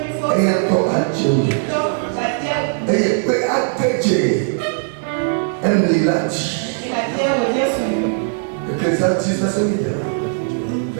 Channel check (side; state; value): left; silent; digital silence